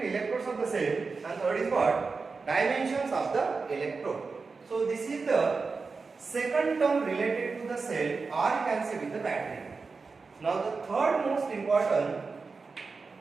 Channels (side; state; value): left; quieter; 4.5 dB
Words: electrodes of the cell. And third is what? Dimensions of the electrode. So this is the second term related to the cell, or you can say with the battery. Now the third most important